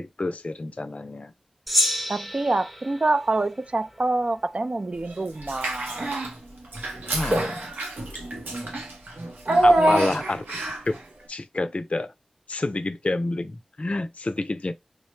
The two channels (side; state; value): both; normal; correlation 0.89